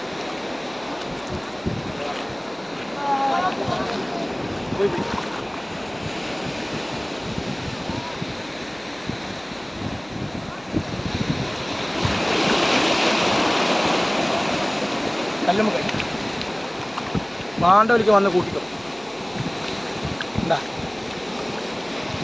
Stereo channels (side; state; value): left; noise; hum, 27 dB below the sound